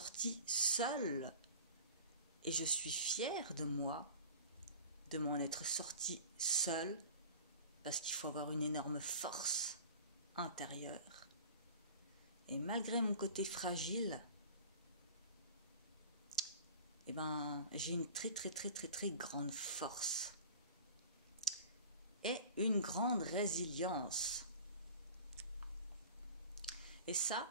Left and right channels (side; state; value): both; inverted; correlation -0.39